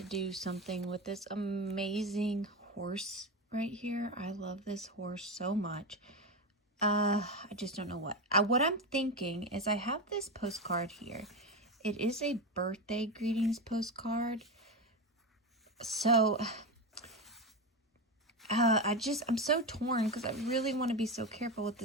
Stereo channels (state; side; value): normal; both; correlation 0.17